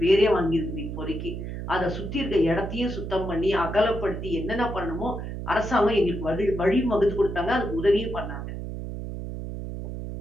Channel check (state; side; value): noise; right; hum, 7 dB below the sound